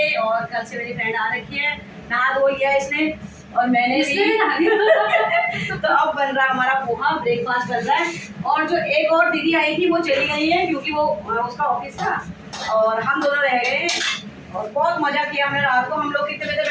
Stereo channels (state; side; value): identical; both; correlation 1.00